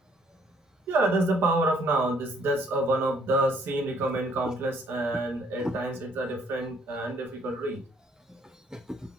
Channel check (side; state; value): both; normal; correlation 0.65